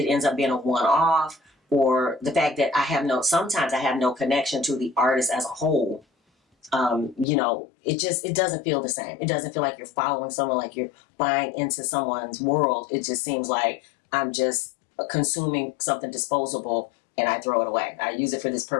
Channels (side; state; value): right; drops out; at 7.2 s